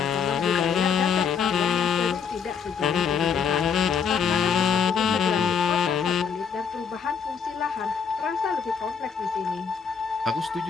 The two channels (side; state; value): right; quieter; 6.6 dB